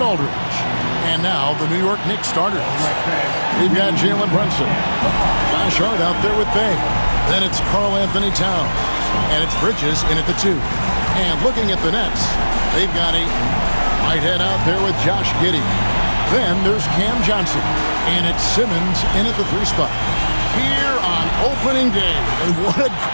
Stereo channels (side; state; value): both; inverted; correlation -1.00